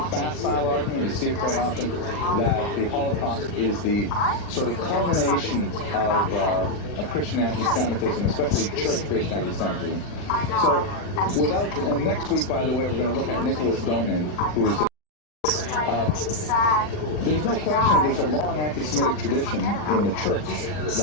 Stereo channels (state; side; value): late; right; 40 ms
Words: facile argument. You see it quite often, that the Holocaust is the sort of culmination of Christian anti-Semitism, especially church-based anti-Semitism. So and next week, by the way, we're going to look at Nicholas Donin, who's there's no question that there's a long anti-Semitic tradition in the church